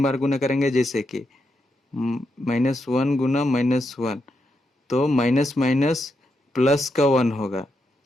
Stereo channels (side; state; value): both; normal; correlation 0.83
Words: बार गुना करेंगे, जैसे कि -1 गुना -1, तो माइनस माइनस प्लस का 1 होगा।